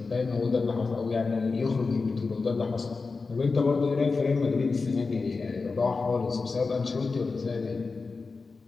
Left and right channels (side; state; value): right; quieter; 4.2 dB